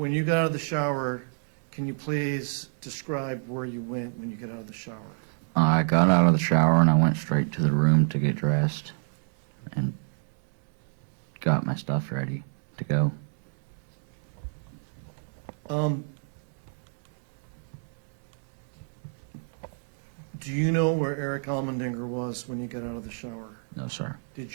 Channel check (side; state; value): left; silent; digital silence